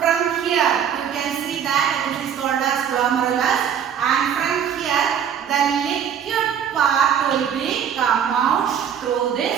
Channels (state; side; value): quieter; left; 8.4 dB